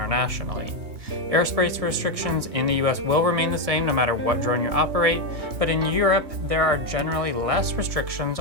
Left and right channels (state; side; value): late; left; 3.3 ms